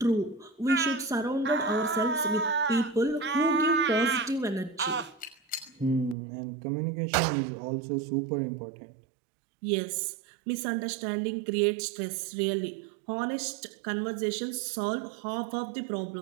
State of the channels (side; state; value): left; drops out; at 6.2 s